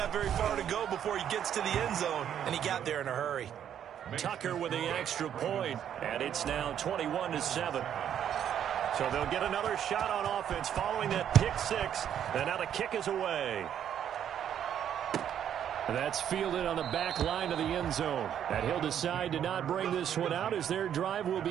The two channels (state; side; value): quieter; left; 9.6 dB